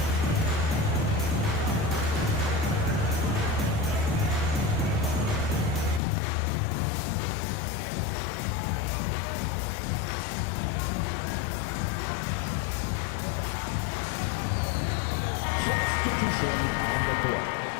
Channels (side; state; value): right; drops out; at 6.0 s